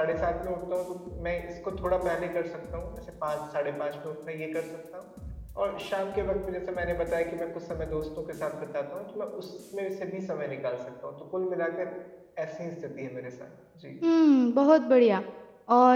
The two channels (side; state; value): both; identical; correlation 1.00